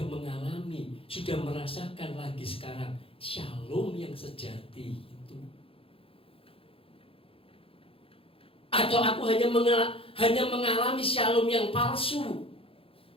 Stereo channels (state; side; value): late; right; 0.27 ms